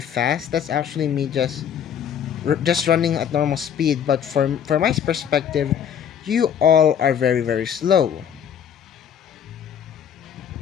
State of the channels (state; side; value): quieter; right; 8.5 dB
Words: fast, that's actually me just running at normal speed. But from my perspective, you all are very very slow.